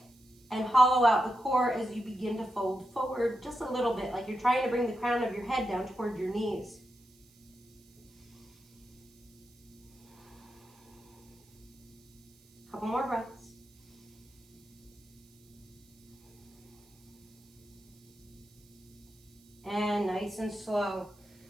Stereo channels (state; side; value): noise; right; hiss, 29 dB below the sound